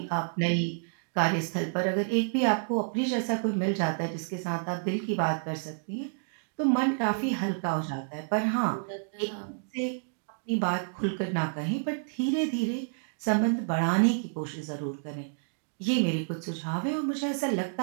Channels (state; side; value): silent; left; digital silence